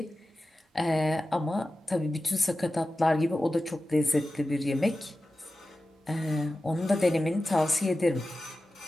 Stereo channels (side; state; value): both; normal; correlation 0.94